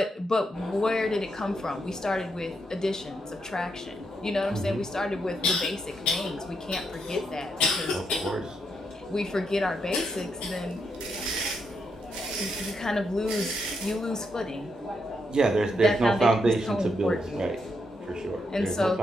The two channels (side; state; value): both; normal; correlation 0.80